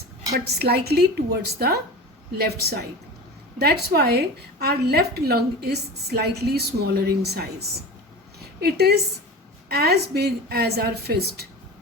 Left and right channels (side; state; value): both; normal; correlation 0.32